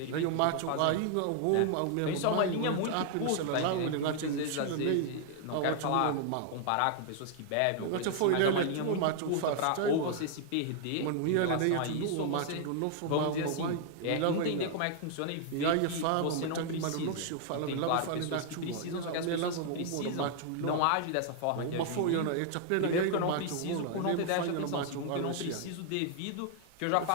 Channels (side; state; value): both; different; correlation 0.00